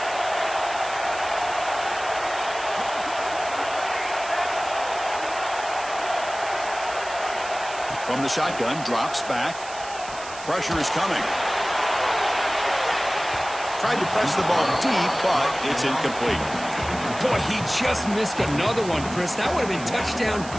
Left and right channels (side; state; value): right; noise; hiss, 14 dB below the sound